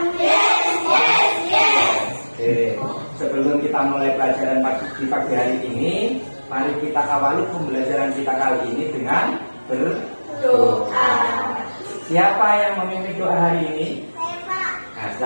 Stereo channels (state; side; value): inverted; both; correlation -1.00